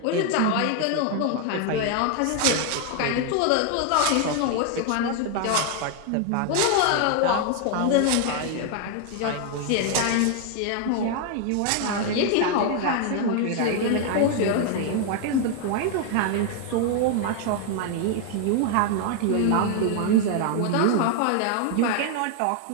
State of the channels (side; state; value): both; different; correlation 0.01